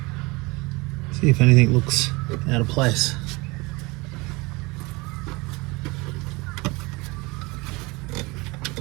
see if anything looks out of place.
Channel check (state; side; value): quieter; left; 24.6 dB